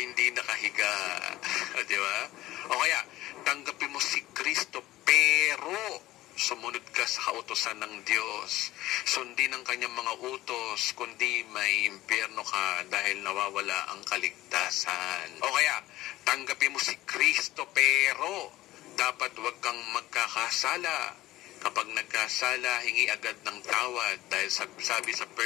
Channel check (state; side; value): quieter; right; 16.4 dB